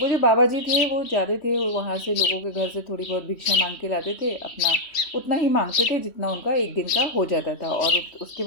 वो जो बाबा जी थे वो जाते थे वहाँ से, लोगों के घर से थोड़ी बहुत भिक्षा मांग के लाते थे, अपना उतना ही मांगते थे जितना उनका एक दिन का हो जाता था, और उसके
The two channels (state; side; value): late; right; 3.1 ms